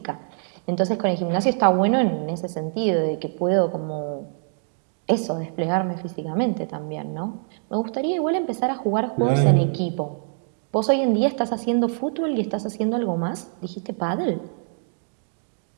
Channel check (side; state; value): left; silent; 62 dB below the other